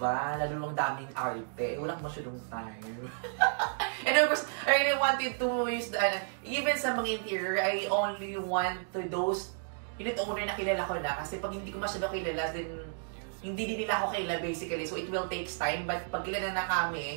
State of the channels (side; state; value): left; silent; digital silence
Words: lalo lang daming arte. Wala ko masyadong time. And of course, I really wanted to use the, even sa mga interior, I only want to those unit owner na kilala ko na. Kasi pag hindi ko masyadong kilala, then hindi din nila ako kilala basically. So, it will take time. But pag kilala na